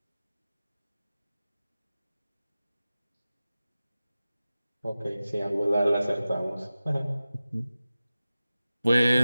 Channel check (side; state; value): both; inverted; correlation -0.95